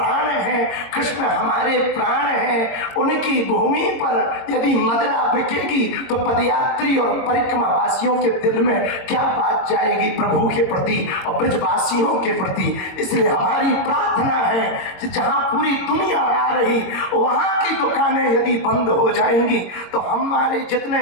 है, कृष्ण हमारे प्राण है, उनकी भूमि पर यदि मदिरा बिकेगी तो पदयात्री और परिक्रमा वासियों के दिल में क्या बात जाएगी प्रभु के प्रति और ब्रजवासियों के प्रति। इसलिए हमारी प्रार्थना है कि जहाँ पूरी दुनिया आ रही, वहाँ की दुकानें यदि बंद हो जाएंगी तो हमारे जितने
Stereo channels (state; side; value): late; right; 22 ms